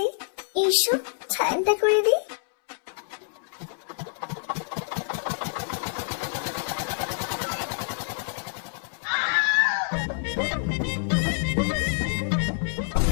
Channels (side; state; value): right; silent; 60 dB below the other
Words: এইসব ঠান্ডা করে দিই।